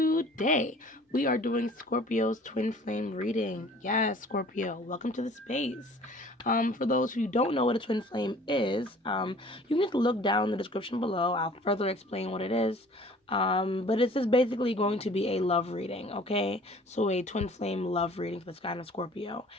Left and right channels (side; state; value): both; normal; correlation 0.50